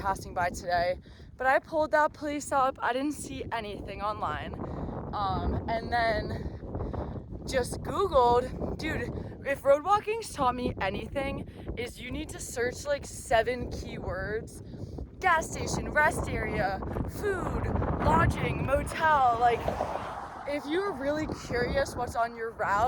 by today. But I pulled that place up. I didn't see anything online. And then just Googled, dude, if road walking's taught me anything, is you need to search like 7 keywords. Gas station, rest area, food, lodging, motel. Like, if you're really curious what's on your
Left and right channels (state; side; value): identical; both; correlation 1.00